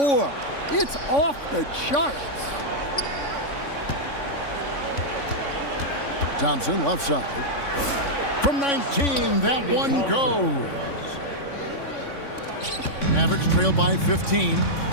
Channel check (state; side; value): late; right; 3.6 ms